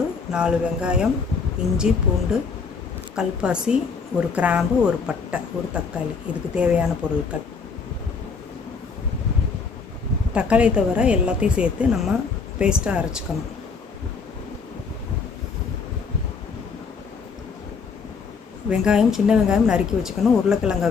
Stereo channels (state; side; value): quieter; right; 5.3 dB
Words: 4 வெங்காயம், இஞ்சி, பூண்டு, கல்பாசி, ஒரு கிராம்பு, ஒரு பட்டை, ஒரு தக்காளி. இதுக்கு தேவையான பொருட்கள். தக்காளியை தவிர எல்லாத்தையும் சேர்த்து நம்ம பேஸ்ட்டாக அரைச்சிக்கணும். வெங்காயம், சின்ன வெங்காயம் நறுக்கி வச்சுக்கணும். உருளைக்கிழங்கை